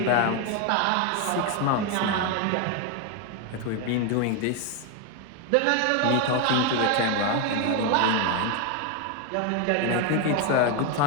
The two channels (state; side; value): different; both; correlation 0.01